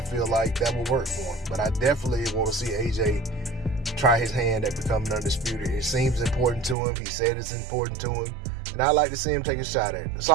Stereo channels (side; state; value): left; drops out; at 6.8 s